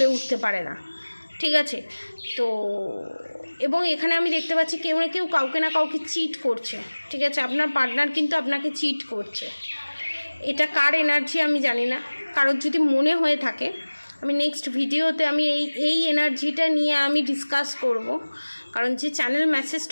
উঠতে পারে না। ঠিক আছে, তো এবং এখানে আমি দেখতে পাচ্ছি কেউ না কেউ কাউকে না কাউকে চিট করছে। ঠিক আছে, আপনার পার্টনার কিন্তু আপনাকে চিট করছে। এটা কার এনার্জি আমি জানি না, কারোর যদি মনে হয়ে থাকে আমি নেক্সট ভিডিওতে আমি এই এনার্জিটা নিয়ে আমি ডিসকাস করব, কারণ যে চ্যানেল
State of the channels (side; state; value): both; inverted; correlation -1.00